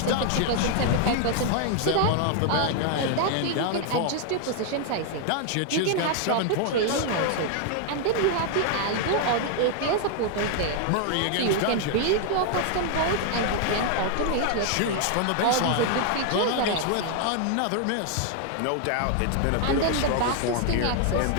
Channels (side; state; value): both; different; correlation 0.00